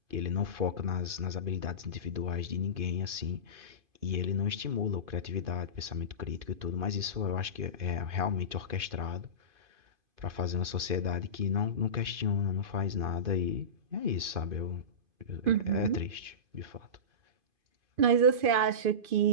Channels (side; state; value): left; late; 2.5 ms